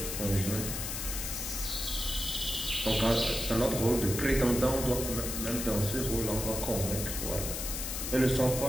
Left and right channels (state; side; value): noise; left; hiss, 4 dB below the sound